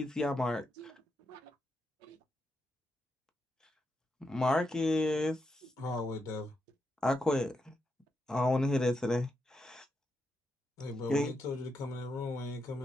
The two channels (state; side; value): normal; both; correlation 0.84